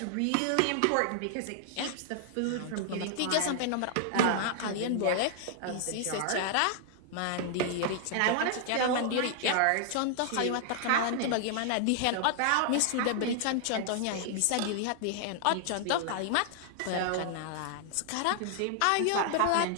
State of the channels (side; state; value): both; different; correlation -0.01